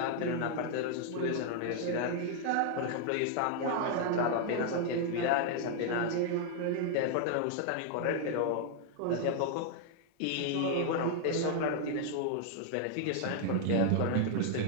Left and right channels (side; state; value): both; different; correlation 0.00